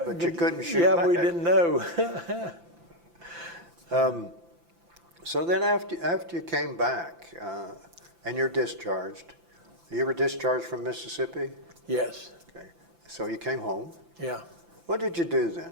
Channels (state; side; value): late; left; 5.9 ms